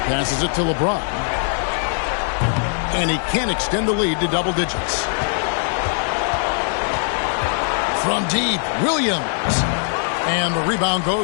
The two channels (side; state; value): right; silent; digital silence